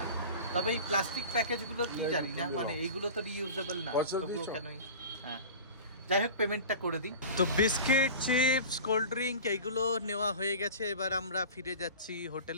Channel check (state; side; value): inverted; both; correlation -0.36